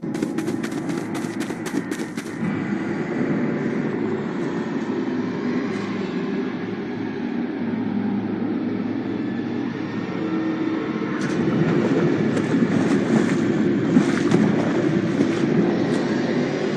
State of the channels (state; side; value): identical; both; correlation 1.00